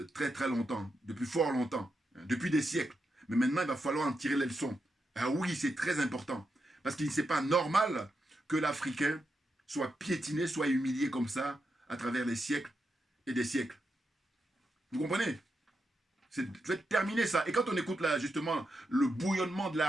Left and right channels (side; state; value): both; normal; correlation 0.85